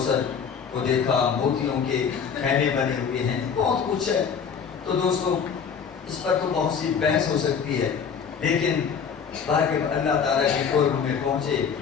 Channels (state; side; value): quieter; right; 6.7 dB